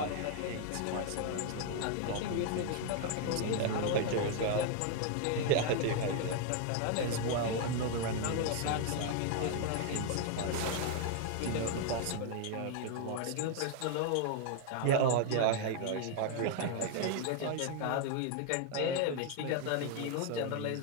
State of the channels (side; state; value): both; different; correlation 0.00